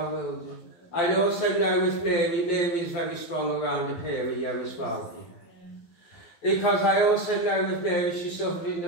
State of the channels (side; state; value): right; late; 11 ms